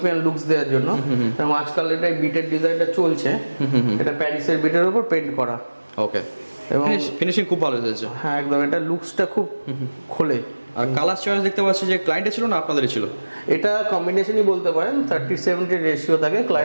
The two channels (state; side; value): inverted; both; correlation -1.00